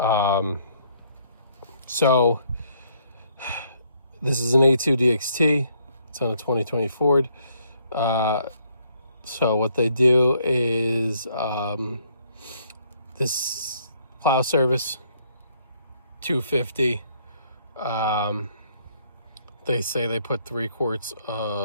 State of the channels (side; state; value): both; inverted; correlation -0.67